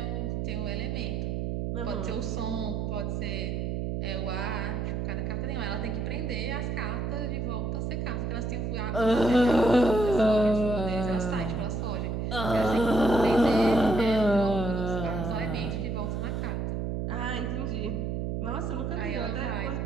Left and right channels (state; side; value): noise; right; hum, 1 dB below the sound